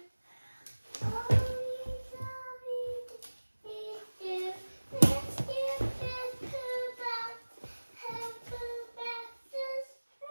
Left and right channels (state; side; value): inverted; both; correlation -1.00